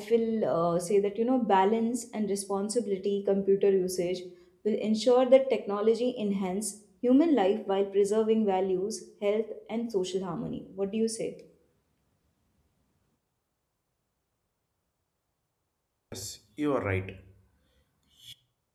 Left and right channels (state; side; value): identical; both; correlation 1.00